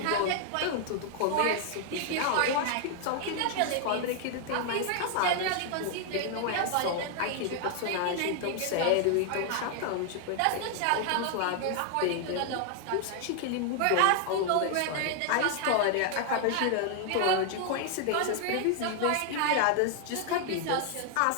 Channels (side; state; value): both; different; correlation 0.00